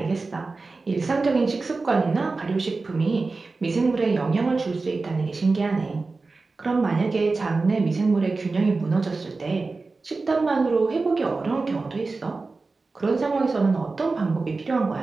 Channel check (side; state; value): left; quieter; 3.8 dB